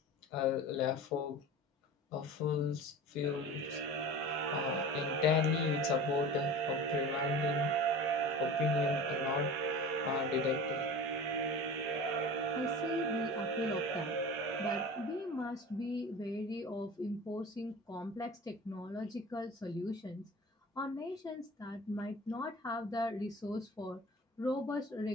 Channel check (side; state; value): both; normal; correlation 0.36